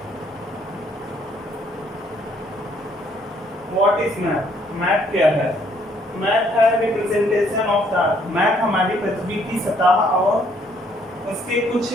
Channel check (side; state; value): both; normal; correlation 0.66